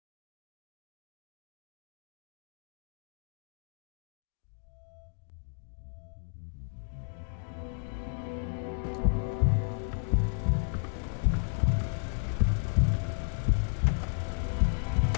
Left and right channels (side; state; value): right; silent; digital silence